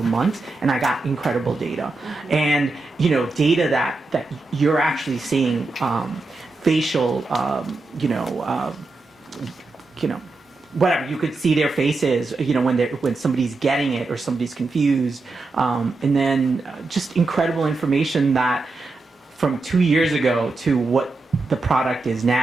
months, and I got incredible data. And data that you're actually seeing facial, whatever, you could see their faces, when somebody's getting it or somebody's confused, and then just incredible information that from 2 years ago to what the product is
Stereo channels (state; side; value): quieter; left; 3.5 dB